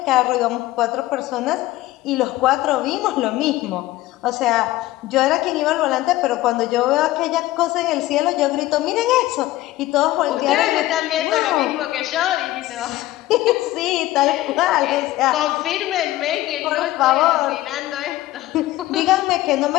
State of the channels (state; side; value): quieter; right; 16.4 dB